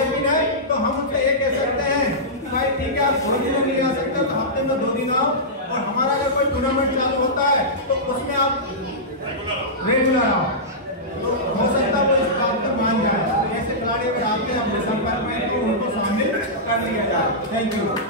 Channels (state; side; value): normal; both; correlation -0.14